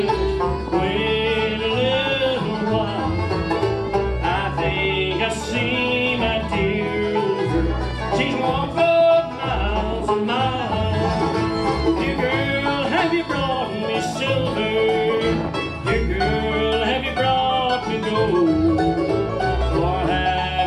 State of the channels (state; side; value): identical; both; correlation 1.00